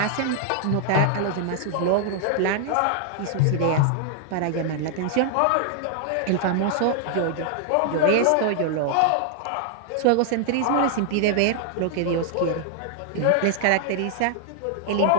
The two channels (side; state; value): both; different; correlation 0.00